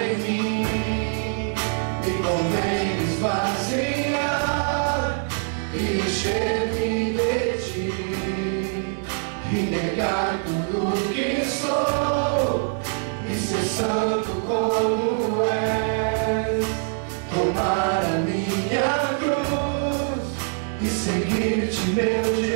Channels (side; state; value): left; silent; 57 dB below the other